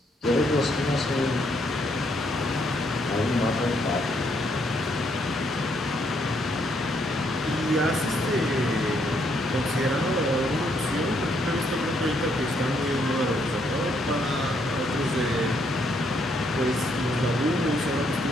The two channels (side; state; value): both; normal; correlation 0.72